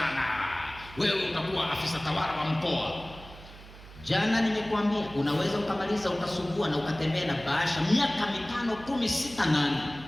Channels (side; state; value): right; noise; hum, 18 dB below the sound